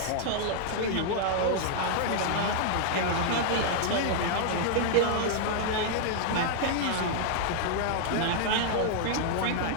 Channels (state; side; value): different; both; correlation -0.01